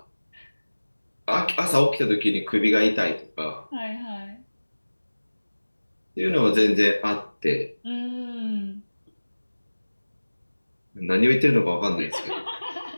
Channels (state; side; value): inverted; both; correlation -1.00